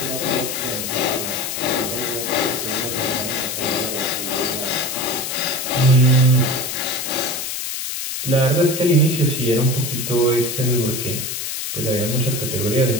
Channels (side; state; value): left; noise; hiss, 4 dB below the sound